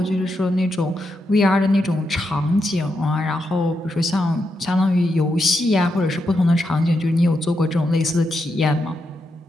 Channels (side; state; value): both; normal; correlation 0.84